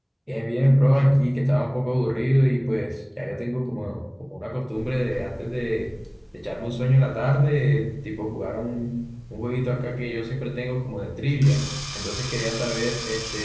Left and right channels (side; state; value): both; identical; correlation 1.00